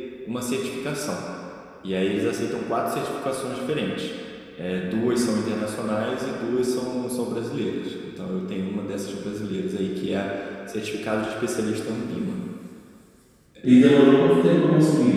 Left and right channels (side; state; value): both; identical; correlation 1.00